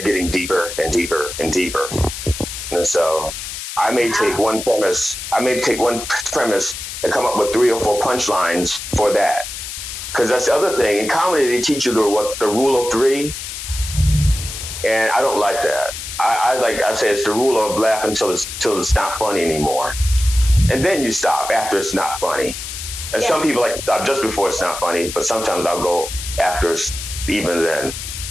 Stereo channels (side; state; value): left; noise; hiss, 8 dB below the sound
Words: getting deeper and deeper and deeper. And so I may take one premise and come up with 3 or 4 punchlines for that. Because that's the other thing. In comedy, they teach you the rule of 3, and I don't like that. I say it's the rule of laugh until it's not funny anymore, and then you stop after it's not funny. And some people like to stop just before it's not funny, but sometimes I'll go after even then,